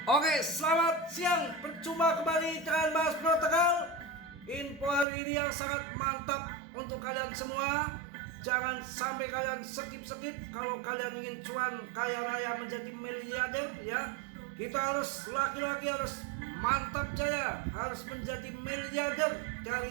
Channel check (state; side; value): drops out; left; at 5.1 s